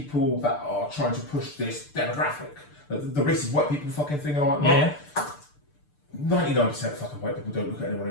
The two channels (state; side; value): late; right; 6.7 ms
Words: that are trying to push this demographic, the racist white people fucking thing and all that, 99% of fucking white people don't look at anyone